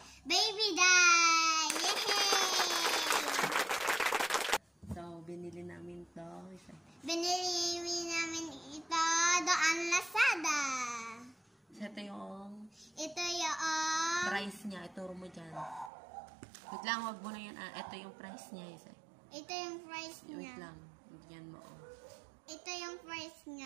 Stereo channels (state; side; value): drops out; left; at 15.9 s